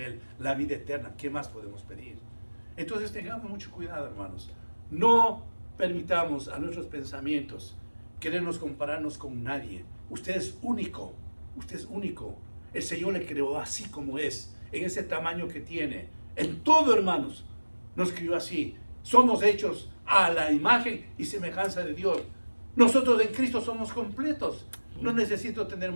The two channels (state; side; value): inverted; both; correlation -1.00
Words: la vida eterna. ¿Qué más podemos pedir? Entonces tengamos mucho cuidado, hermanos. No permitamos a nuestros pensamientos querernos compararnos con nadie. Usted es único, usted es único. El Señor le creó así como es, en ese tamaño que tiene. En todo, hermanos, nos crió así. Somos hechos a la imagen y semejanza de Dios. Nosotros en Cristo somos completos. No necesito tener